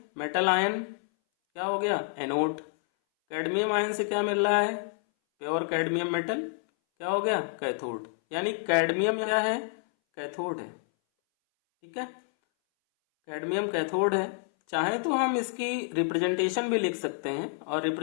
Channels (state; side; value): silent; right; 59 dB below the other